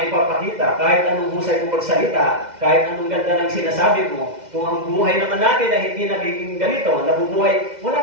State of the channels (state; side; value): late; left; 2.1 ms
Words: kahit anong husay mo magsalita, kahit anong ganda ng sinasabi mo, kung ang buhay naman natin ay hindi nagiging ganito, nabubuhay,